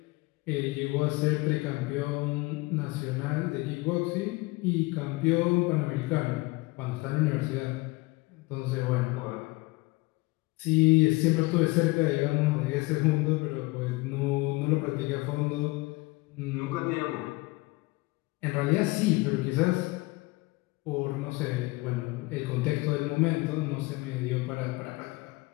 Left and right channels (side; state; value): right; quieter; 23.3 dB